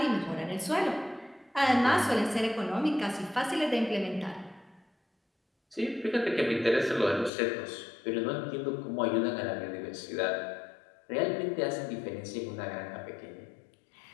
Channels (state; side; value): drops out; right; at 7.3 s